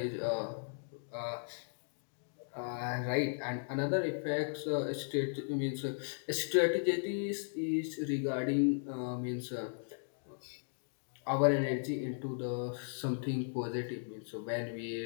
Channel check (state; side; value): silent; right; digital silence